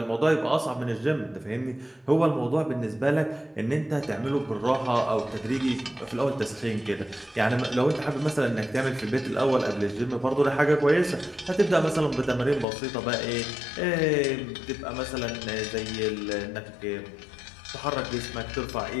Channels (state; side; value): drops out; right; at 12.7 s